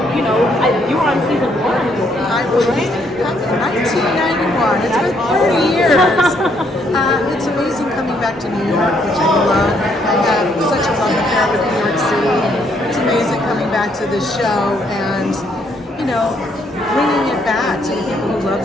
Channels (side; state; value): both; normal; correlation 0.70